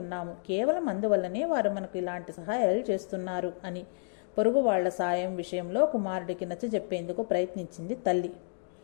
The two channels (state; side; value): silent; right; digital silence